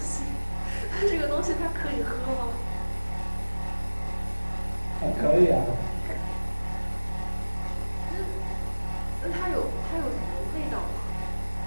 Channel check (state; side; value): inverted; both; correlation -1.00